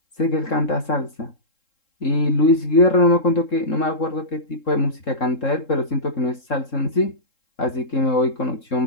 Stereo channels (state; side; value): late; right; 3.7 ms